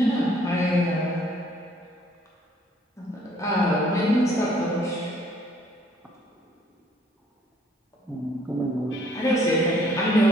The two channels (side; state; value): both; normal; correlation 0.62